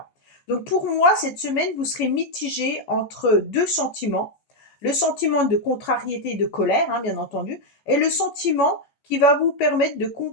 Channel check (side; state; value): right; late; 14 ms